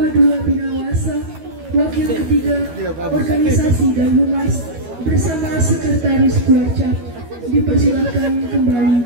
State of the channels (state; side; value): late; left; 12 ms